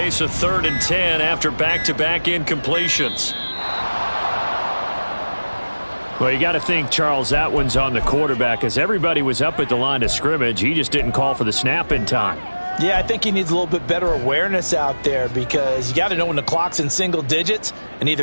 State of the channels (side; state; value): both; inverted; correlation -1.00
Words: a 3rd and 10 after back-to-back incompletions. Well, you got to think, Charles, that one's on the quarterback, as everybody was up at the line of scrimmage. He just didn't call for the snap in time. Yeah, I think he needs a little bit better awareness out there, because you got to know when the clock's in single digits and